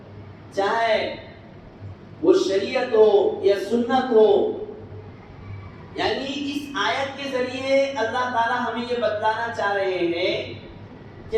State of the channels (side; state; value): both; identical; correlation 1.00